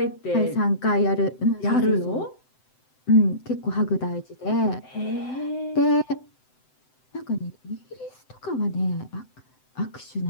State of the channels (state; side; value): late; right; 7.8 ms